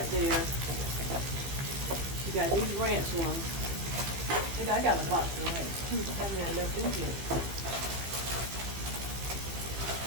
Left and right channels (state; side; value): late; left; 15 ms